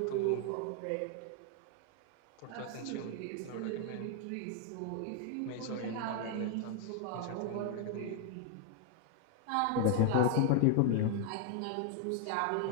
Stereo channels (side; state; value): both; different; correlation 0.00